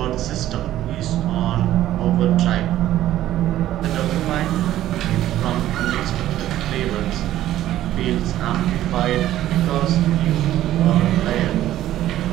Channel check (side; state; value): left; quieter; 13.4 dB